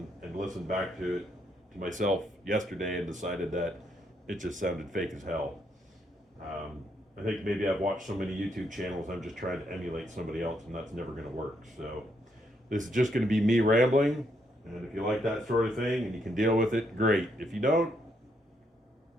listened back to it to myself yesterday and decided that it just sounded fake as hell. I think maybe I've watched so many YouTube channels, I'm just trying to emulate somebody else, and that's never going to work. So this is just going to be me rambling, and if you like that sort of thing and you can deal with it, great. If you don't,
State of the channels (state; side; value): normal; both; correlation 0.76